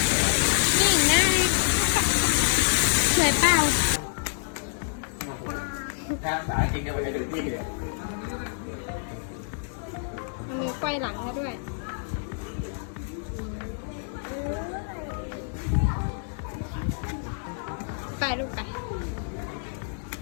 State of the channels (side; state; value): right; silent; digital silence